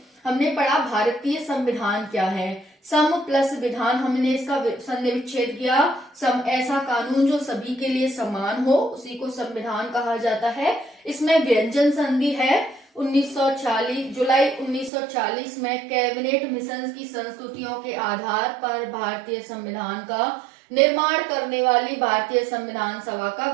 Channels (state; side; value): drops out; left; at 14.9 s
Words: हमने पढ़ा भारतीय संविधान क्या है। सम प्लस विधान, हमने इसका संधि विच्छेद किया। सम ऐसा कानून जो सभी के लिए समान हो, उसी को संविधान कहा जाता है। इसमें व्यंजन संधि है 1940 जुलाई 1940 में कैबिनेट मिशन की संस्तुतियों के आधार पर भारतीय संविधान का निर्माण करने वाली भारतीय संविधान सभा का